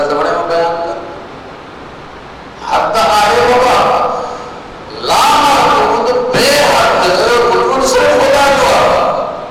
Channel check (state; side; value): identical; both; correlation 1.00